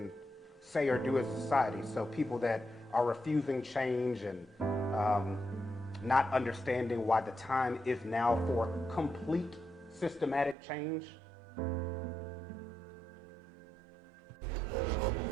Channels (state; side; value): drops out; left; at 10.6 s